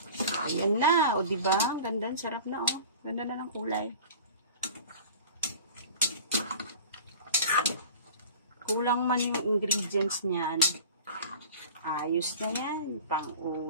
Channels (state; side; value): inverted; both; correlation -0.40